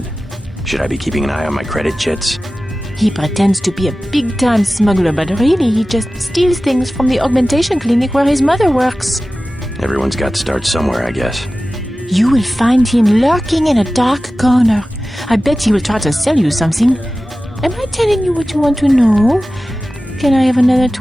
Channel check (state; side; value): normal; both; correlation 0.95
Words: Should I be keeping an eye on my credit chits? He pretends to be a big-time smuggler, but really he just steals things from the augmentation clinic where his mother works. Everyone's got to start somewhere, I guess. You will find him lurking in a dark corner. I bet he will try to sell you something. Am I telling you what you want to know? Can I have another